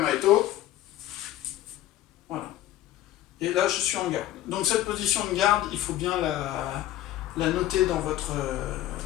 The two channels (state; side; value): quieter; right; 13.9 dB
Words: Voilà. Et là, je suis en garde. Donc, cette position de garde, il faut bien la noter dans votre